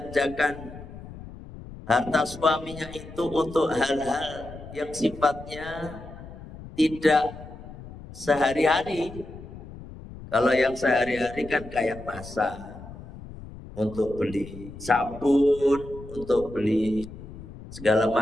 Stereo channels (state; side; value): noise; left; rumble, 15 dB below the sound